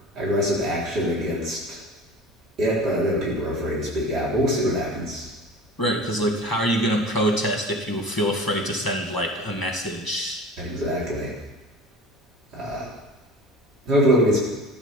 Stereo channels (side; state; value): both; normal; correlation 0.38